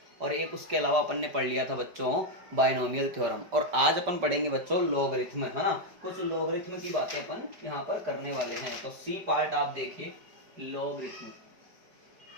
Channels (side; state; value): left; late; 5.2 ms